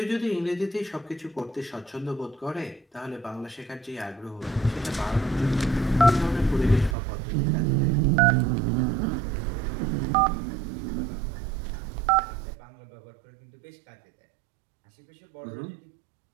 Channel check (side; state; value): left; drops out; at 7.0 s